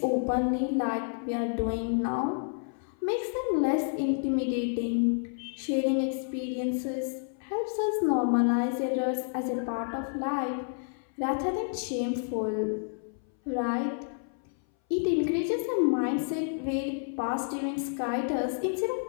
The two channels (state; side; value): silent; right; 57 dB below the other